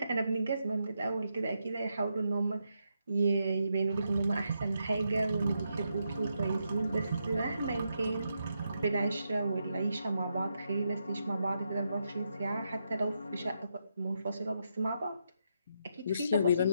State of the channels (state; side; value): inverted; both; correlation -0.82